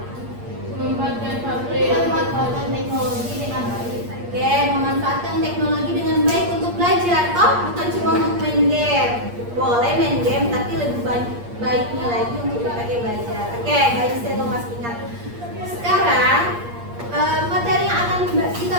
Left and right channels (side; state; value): left; late; 8.5 ms